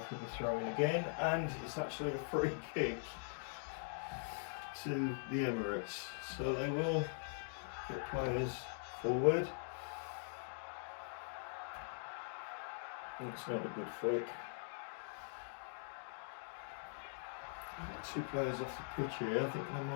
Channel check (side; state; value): right; silent; digital silence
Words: the throw in again, and it's actually a free kick to the Emirates. So they will get players forward. It's not a good flick. Two players off the pitch here. I think they